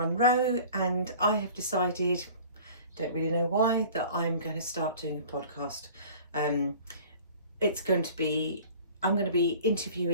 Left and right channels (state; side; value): inverted; both; correlation -0.45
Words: and I have decided, don't really know why, that I'm going to start doing a podcast. It's going to be, I'm going to be